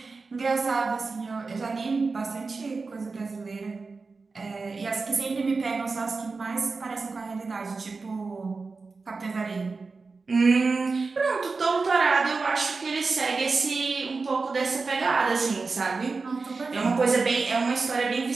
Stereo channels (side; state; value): left; quieter; 4.2 dB